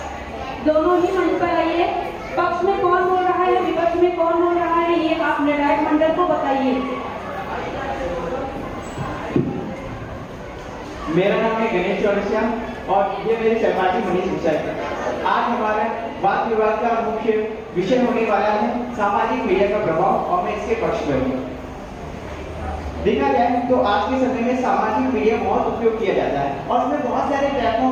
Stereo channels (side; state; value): both; identical; correlation 1.00